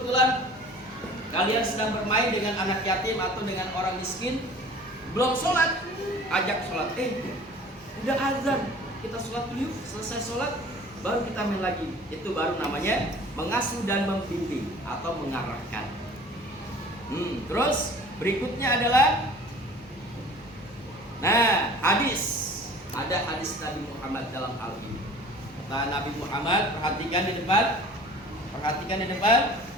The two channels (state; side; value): normal; both; correlation 0.45